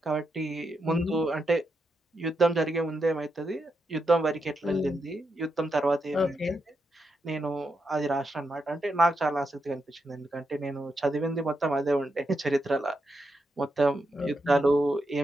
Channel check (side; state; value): both; normal; correlation 0.84